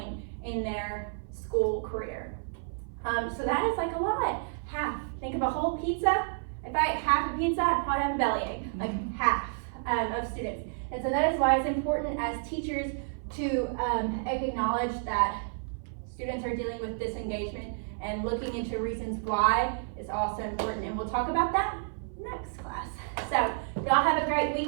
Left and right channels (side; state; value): left; silent; 55 dB below the other